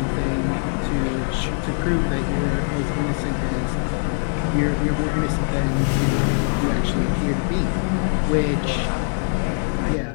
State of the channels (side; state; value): right; silent; 60 dB below the other